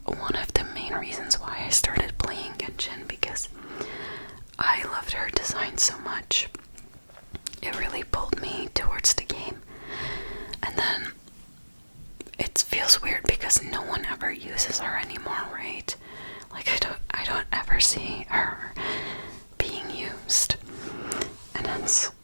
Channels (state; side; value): inverted; both; correlation -1.00